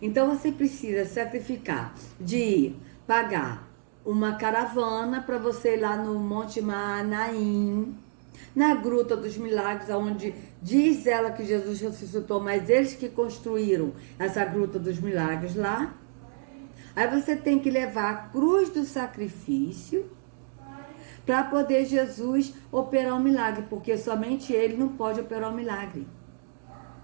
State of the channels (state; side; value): silent; left; digital silence